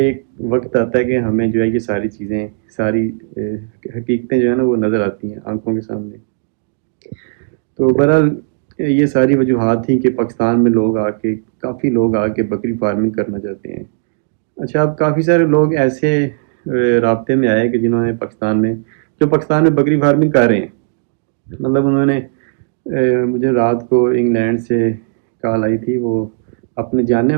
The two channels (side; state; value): left; silent; digital silence